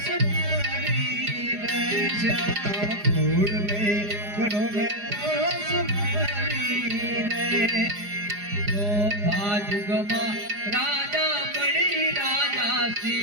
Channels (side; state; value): left; late; 4.9 ms